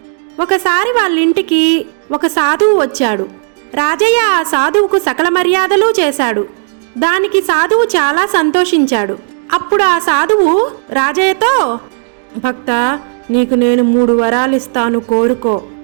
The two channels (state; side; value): silent; left; digital silence